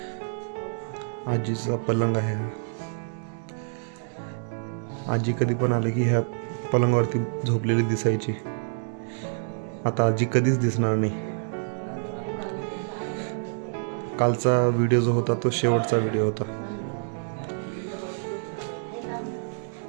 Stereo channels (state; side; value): silent; left; digital silence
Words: आजीचा पलंग आहे. आजी कधी पण आले की ह्या पलंगावरती झोपलेली दिसायची. आता आजी कधीच दिसणार नाही. कालचा व्हिडिओ जो होता तो शेवटचा व्हिडिओ होता.